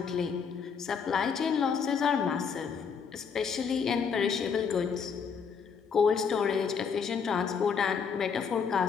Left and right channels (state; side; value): quieter; right; 6.3 dB